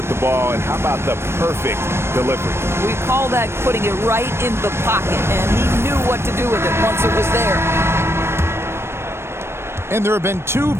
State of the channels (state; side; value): late; left; 0.12 ms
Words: the ball, and how about the perfect delivery? We call that putting it right in the pocket, and he knew what to do with it once it was there. And there have been 2